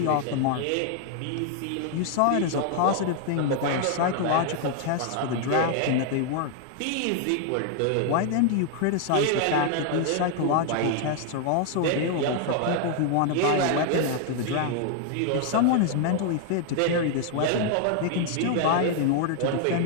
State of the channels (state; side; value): different; both; correlation 0.00